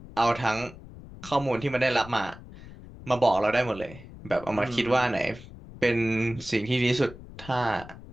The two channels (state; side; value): noise; left; rumble, 17 dB below the sound